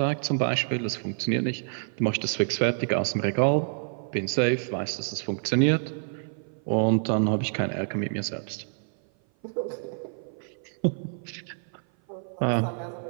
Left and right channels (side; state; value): left; silent; 56 dB below the other